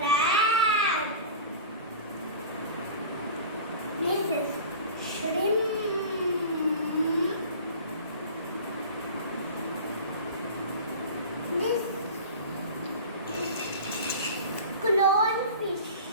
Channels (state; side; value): inverted; both; correlation -0.37